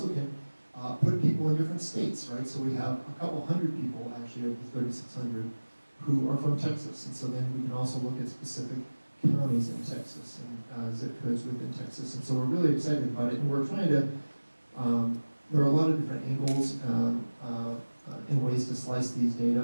can put people in different states, right? So we have a couple hundred people, actually, of the 3,600, who are from Texas, and so then we can also look at specific counties in Texas and zip codes within Texas, and so we're really excited about it, and we're trying to, there are a lot of different angles and ways to slice these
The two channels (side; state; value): both; inverted; correlation -1.00